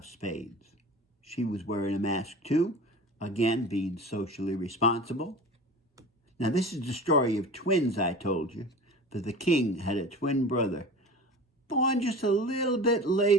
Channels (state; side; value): normal; both; correlation 0.36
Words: spades. She was wearing a mask too, again, being socially responsible. Now, this is the story of twins, I told you, that the king had a twin brother, born just a little bit